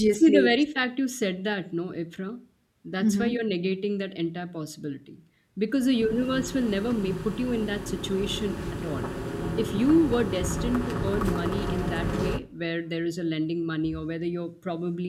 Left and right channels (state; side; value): identical; both; correlation 1.00